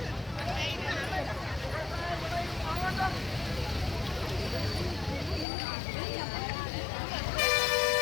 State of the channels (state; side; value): drops out; right; at 5.5 s